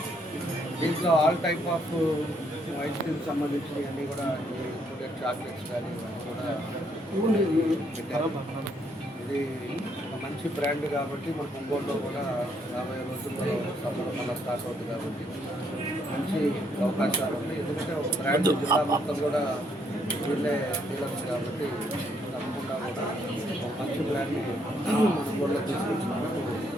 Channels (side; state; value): both; normal; correlation 0.71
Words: దీంట్లో all type of ice cream సంబంధించినవి అన్నీ కూడా ఇంక్లూడెడ్ చాక్లెట్స్ కానీ ఇవన్నీ కూడా పెట్టారు. ఇది మంచి బ్రాండ్ కాబట్టి మనకు ఒంగోలులో కూడా రాబోయే రోజుల్లో సమ్మర్ మళ్ళీ స్టార్ట్ అవుతుంది కాబట్టి మంచి అవకాశాలు ఉన్నాయి. ఎందుకంటే ఒక బ్రాండ్ జిల్లా మొత్తం కూడా వీళ్ళే డీలర్స్ కాబట్టి తప్పకుండా కూడా ఒక మంచి బ్రాండ్ని మన ఒంగోలులో తీసుకొచ్చినాము.